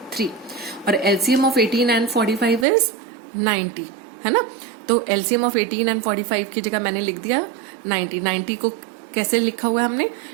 3. और LCM ऑफ 18 एंड 45 इज 90, है ना. तो LCM ऑफ 18 एंड 45 की जगह मैंने लिख दिया 90. 90 को कैसे लिखा हुआ है हमने?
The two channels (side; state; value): left; drops out; at 2.7 s